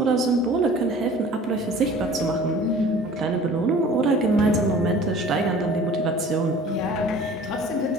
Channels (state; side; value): normal; both; correlation 0.46